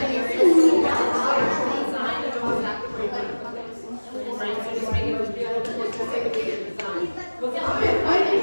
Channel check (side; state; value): both; inverted; correlation -1.00